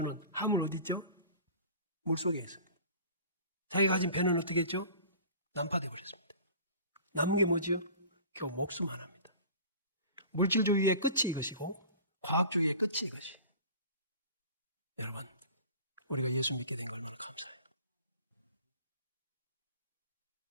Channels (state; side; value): inverted; both; correlation -0.42